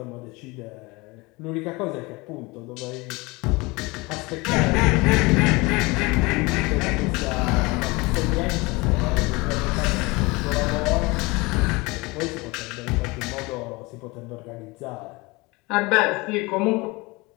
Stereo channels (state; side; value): quieter; right; 24.5 dB